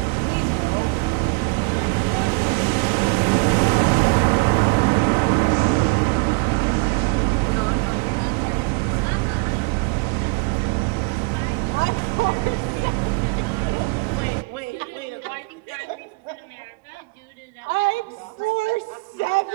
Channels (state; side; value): quieter; left; 31.6 dB